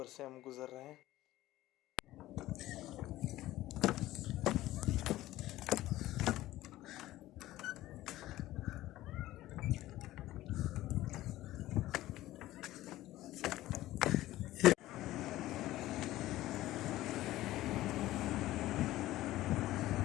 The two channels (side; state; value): right; quieter; 15.7 dB